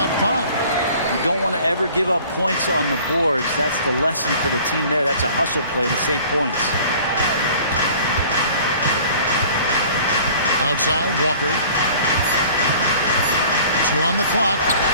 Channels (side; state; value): both; inverted; correlation -0.48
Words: 5. You don't want to ever give up points on the boards. That's the lesson for the team there. That's a hustle play to save points. Outside, Walker. 2 on the clock.